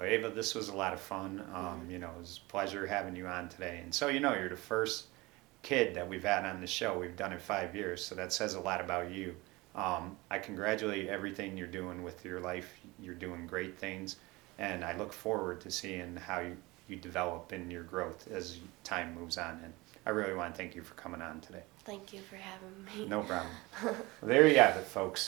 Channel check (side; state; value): left; quieter; 22.4 dB